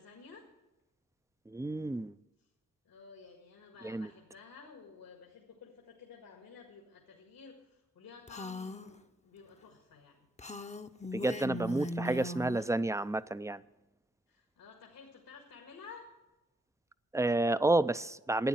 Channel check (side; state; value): both; normal; correlation 0.80